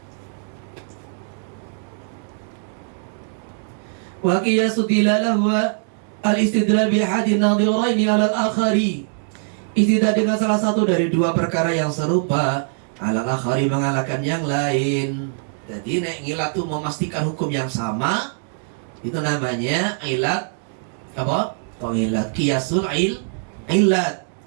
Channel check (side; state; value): left; silent; digital silence